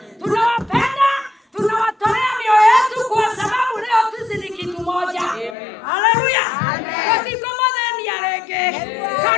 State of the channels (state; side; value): drops out; right; at 5.6 s